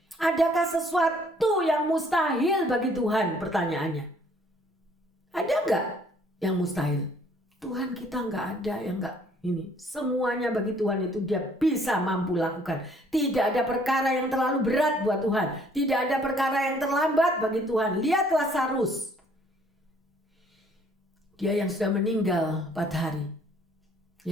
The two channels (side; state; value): both; normal; correlation 0.61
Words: Adakah sesuatu yang mustahil bagi Tuhan? Pertanyaannya. Ada enggak yang mustahil? Tuhan kita enggak ada yang enggak ini. Semuanya bagi Tuhan itu dia bisa mampu lakukan. Tidak ada perkara yang terlalu berat buat Tuhan. Tidak ada perkara yang terlambat bagi Tuhan. Lihat Lazarus. Dia yang sudah meninggal 4 hari.